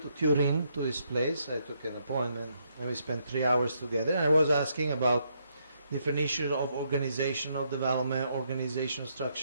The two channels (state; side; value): inverted; both; correlation -0.74